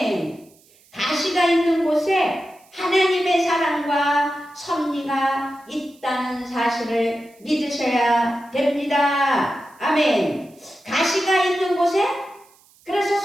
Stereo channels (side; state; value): right; noise; hiss, 30 dB below the sound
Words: 가시가 있는 곳에 하나님의 사랑과 섭리가 있다는 사실을 믿으셔야 됩니다. 아멘. 가시가 있는 곳에 그래서